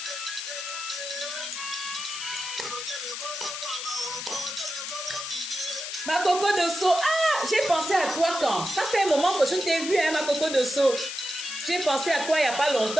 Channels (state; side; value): noise; left; hiss, 6 dB below the sound